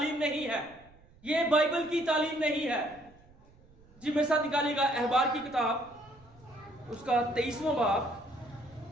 نہیں ہے, یہ بائبل کی تعلیم نہیں ہے. جی میرے ساتھ نکالیے گا احبار کی کتاب اس کا 23واں باب,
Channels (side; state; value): right; noise; rumble, 27 dB below the sound